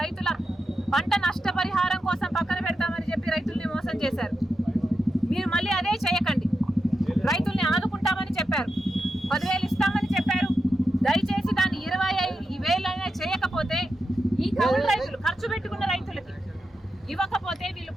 రైతుల పంట నష్టపరిహారం కోసం పక్కన పెడతామని చెప్పి రైతుల్ని మోసం చేశారు. మీరు మళ్ళీ అదే చేయకండి. రైతుల్ని ఆదుకుంటామని చెప్పారు, 10,000 ఇస్తామని చెప్పారు. దయచేసి దాన్ని 25,000 చేయకపోతే ఈ కౌలు రైతులు ఖర్చు పెట్టుకున్న రైతులకి ఇవ్వకపోతే వీళ్ళు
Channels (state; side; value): normal; both; correlation 0.88